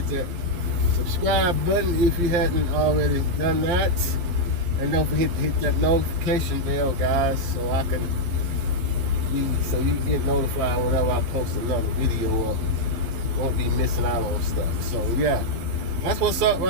that subscribe button if you hadn't already done that, and don't forget to hit that notification bell, guys, so you can get notified whenever I post another video up. Won't be missing out on stuff. So yeah, that's what's up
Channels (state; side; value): late; left; 12 ms